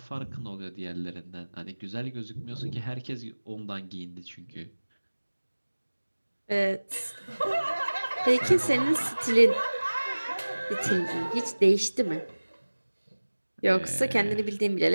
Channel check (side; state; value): both; inverted; correlation -1.00